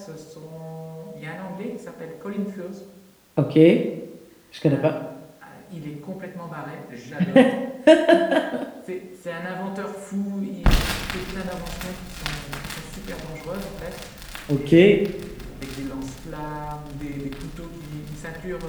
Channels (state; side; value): identical; both; correlation 1.00